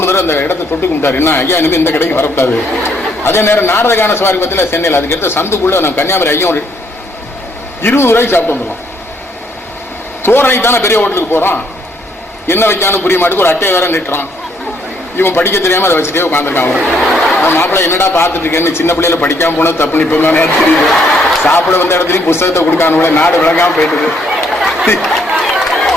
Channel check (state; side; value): normal; both; correlation 0.69